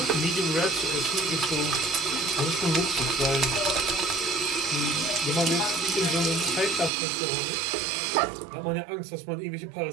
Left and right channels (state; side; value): drops out; left; at 6.9 s